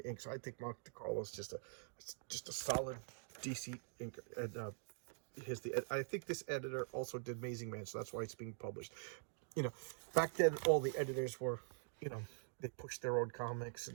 ink. So I think Mike DeCarlo is just a solid DC ink. And I think this editor also did Amazing Man, so that's why it's being published. You know, back then all the editors were, they pushed their own comics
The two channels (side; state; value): left; silent; digital silence